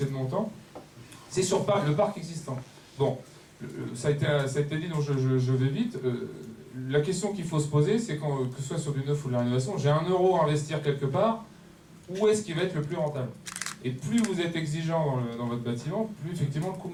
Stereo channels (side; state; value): both; identical; correlation 1.00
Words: de mon temps, c'est sur le parc existant. Bon, ça a été dit, donc je vais vite. La question qu'il faut se poser, c'est que ce soit sur du neuf ou de la rénovation, j'ai 1 euro à investir quelque part, où est-ce qu'il va être le plus rentable? Et plus vous êtes exigeant dans votre bâtiment, plus effectivement le coût